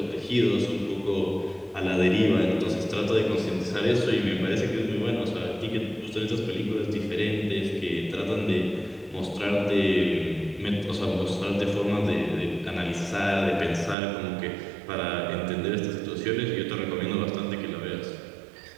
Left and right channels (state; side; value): drops out; left; at 14.0 s